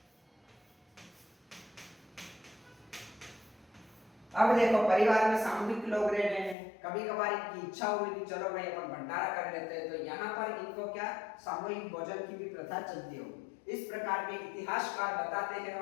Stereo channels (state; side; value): drops out; right; at 6.6 s